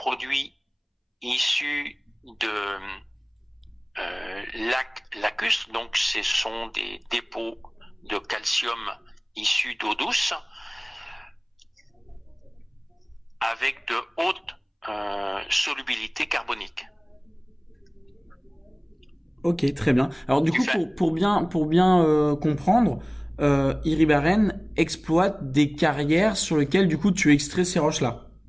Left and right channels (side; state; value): both; identical; correlation 1.00